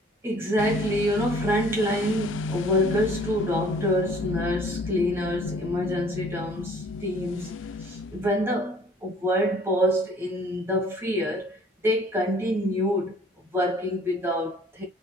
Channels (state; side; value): normal; both; correlation 0.54